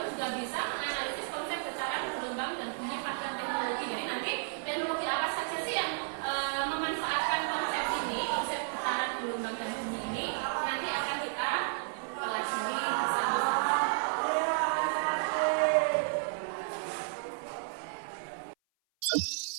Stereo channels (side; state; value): left; silent; 56 dB below the other